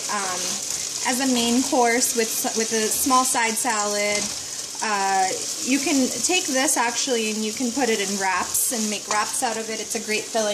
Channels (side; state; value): both; identical; correlation 1.00